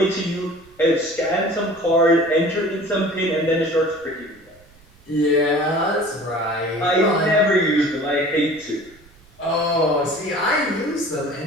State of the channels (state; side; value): noise; right; rumble, 28 dB below the sound